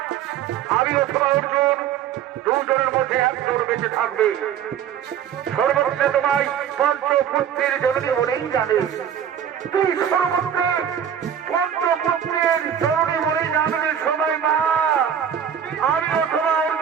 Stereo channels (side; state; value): left; quieter; 8.9 dB